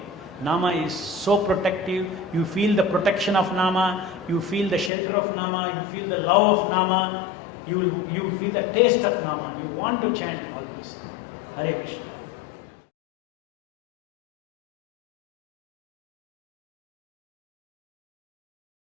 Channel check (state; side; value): drops out; right; at 4.9 s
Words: Nama is so protective. You feel the protection of Nama, you feel the shelter of Nama, you feel the love of Nama, you feel the taste of Nama. You want to chant always. Hare Krishna.